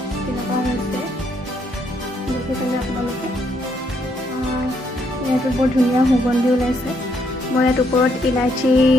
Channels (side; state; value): both; normal; correlation 0.73